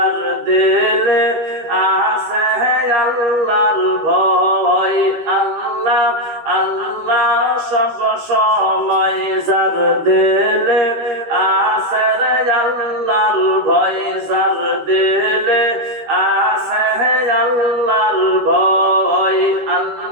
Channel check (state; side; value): late; left; 13 ms